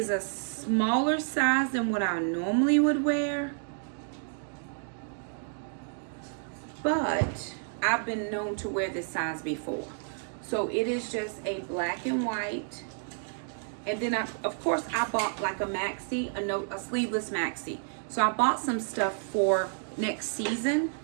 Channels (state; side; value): silent; left; digital silence